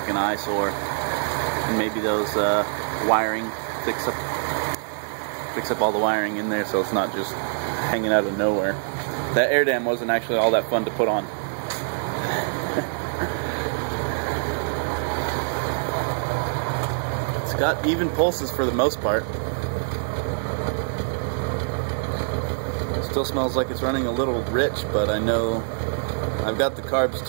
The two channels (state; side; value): silent; left; 62 dB below the other